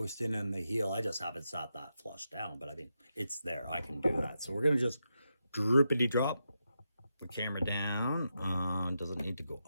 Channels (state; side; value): inverted; both; correlation -0.86